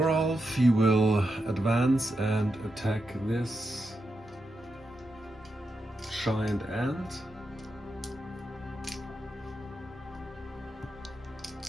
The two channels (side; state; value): both; normal; correlation 0.86